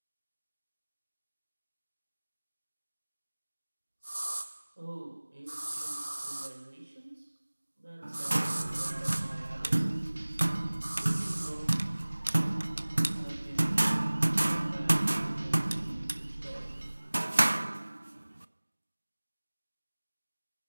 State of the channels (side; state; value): both; inverted; correlation -1.00